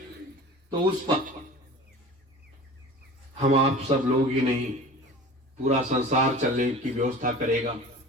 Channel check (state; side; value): normal; both; correlation 0.38